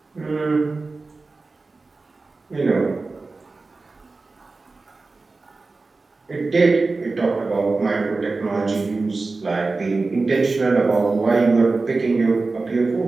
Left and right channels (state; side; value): quieter; left; 3.7 dB